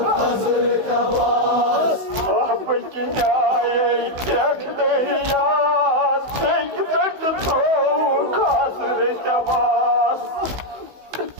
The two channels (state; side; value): late; left; 16 ms